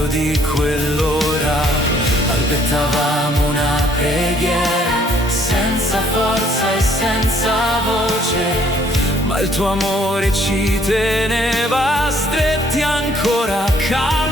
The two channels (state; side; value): normal; both; correlation 0.63